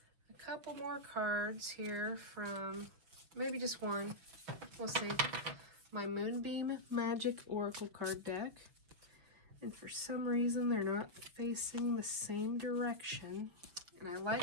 a couple more cards here from, maybe just one, we'll see. My Moonbeam Magick Oracle card deck. And for some reason, they're not facing the same direction. And I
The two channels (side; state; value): left; late; 5.8 ms